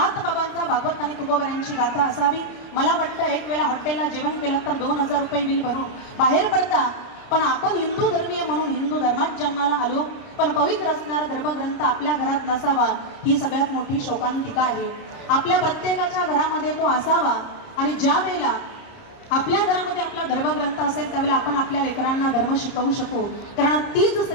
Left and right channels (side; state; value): right; late; 30 ms